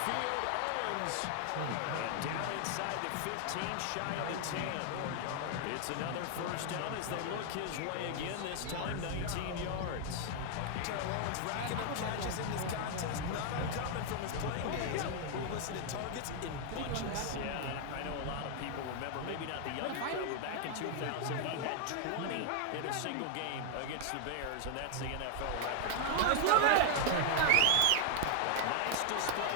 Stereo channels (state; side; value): different; both; correlation 0.00